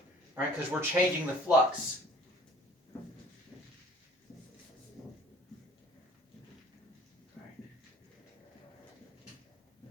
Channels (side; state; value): both; normal; correlation 0.52